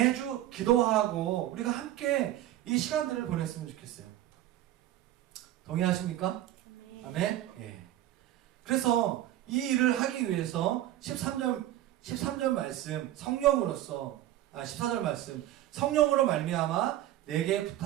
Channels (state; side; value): quieter; left; 13.7 dB